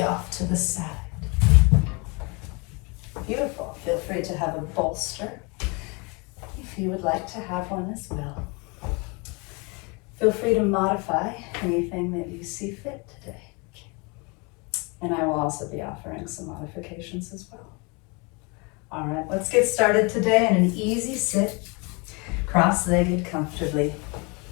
off to the side. Beautiful. Feel free to have a bolster if you would like to have one as well. Feel free to modify anything that you see fit today. And I will also be offering some modifications as well. All right, let's get started today in an easy sit, cross-legged comfortably.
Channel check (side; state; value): right; quieter; 29.9 dB